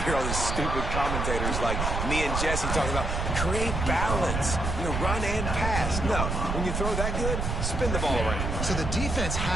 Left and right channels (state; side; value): noise; right; rumble, 2 dB below the sound